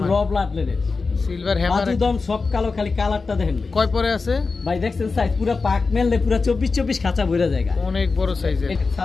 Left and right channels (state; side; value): quieter; right; 4.3 dB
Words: হ্যামার, র ব্লাড লেনের সিলভার হ্যামার। বাজুদম সব কালো, খালি কালারটা দেখেন ভাই। কয় পরে আছে ভাই? দেখছেন সাইজ পুরা পাক মেললে পুরা 24 খাঁচা ভরা জায়গা, অনেক বড় সাইজের।